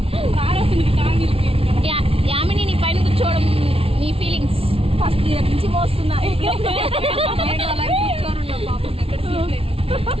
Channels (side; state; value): left; late; 0.27 ms